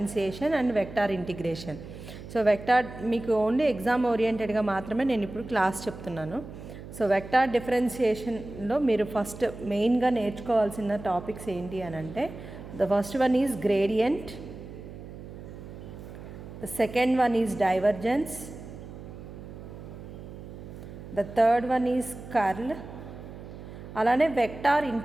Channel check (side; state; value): right; noise; hum, 13 dB below the sound